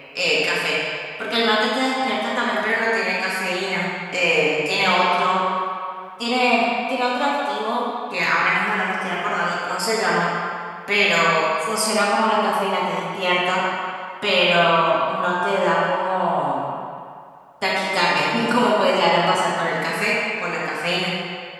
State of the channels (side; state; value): both; identical; correlation 1.00